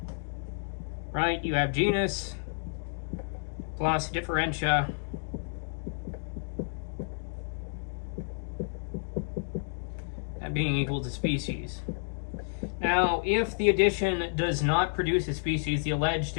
Right? You have genus plus differentia that being equal to species. Now, if the addition does not produce a species, the alleged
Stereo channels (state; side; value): silent; right; digital silence